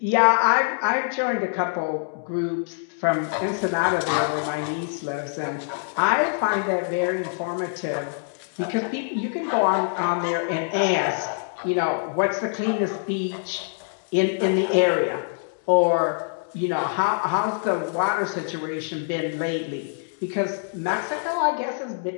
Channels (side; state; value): right; silent; digital silence